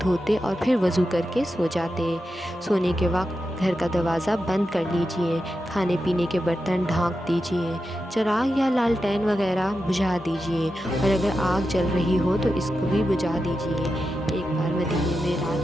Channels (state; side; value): normal; both; correlation 0.89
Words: دھوتے اور پھر وضو کر کے سو جاتے۔ سونے کے وقت گھر کا دروازہ بند کر لیجئے، کھانے پینے کے برتن ڈھانک دیجئے، چراغ یا لالٹین وغیرہ بجھا دیجئے، اور اگر آگ جل رہی ہو تو اس کو بھی بجھا دیجئے۔ ایک بار مدینے میں